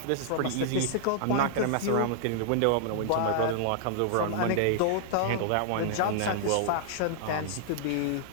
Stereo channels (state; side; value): different; both; correlation -0.01